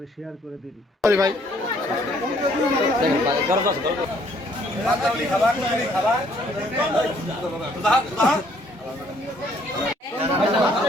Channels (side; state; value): both; normal; correlation 0.64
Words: শেয়ার করে দিন। ভাই